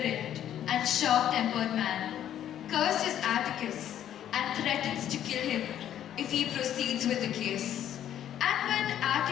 and sharp-tempered man, curses Atticus and threatens to kill him if he proceeds with the case. And when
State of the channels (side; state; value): right; quieter; 10.8 dB